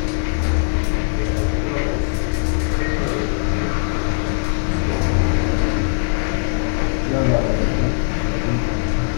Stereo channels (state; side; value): silent; right; 60 dB below the other